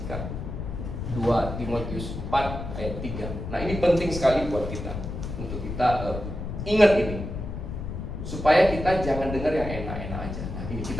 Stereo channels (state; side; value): noise; left; rumble, 6 dB below the sound